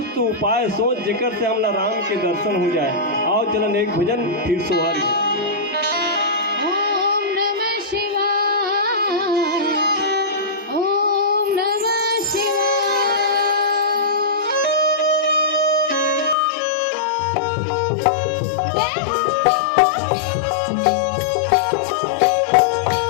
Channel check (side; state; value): right; drops out; at 16.4 s